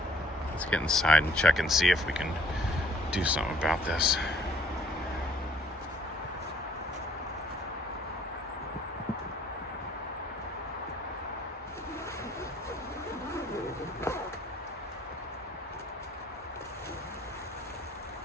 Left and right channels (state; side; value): normal; both; correlation 0.59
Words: let's get inside and check and see if we can do something about this.